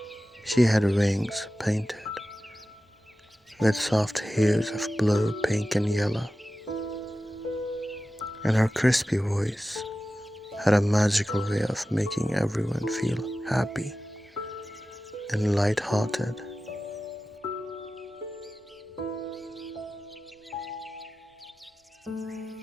She had wings painted with soft hues of blue, pink, and yellow, and her crispy voice had a magical way of making everyone feel happy and light-hearted.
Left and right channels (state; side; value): normal; both; correlation 0.94